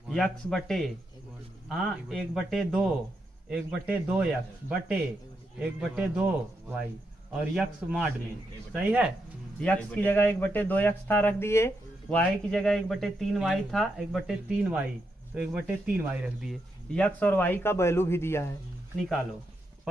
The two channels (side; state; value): both; normal; correlation 0.82